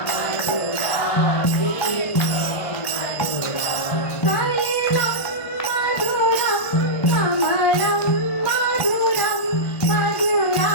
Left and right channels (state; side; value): late; right; 1.6 ms